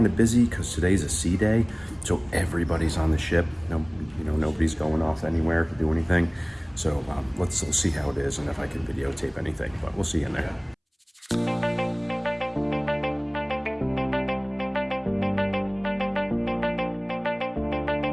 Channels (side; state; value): both; identical; correlation 1.00